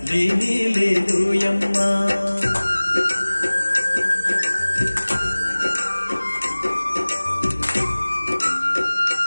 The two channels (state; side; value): inverted; both; correlation -1.00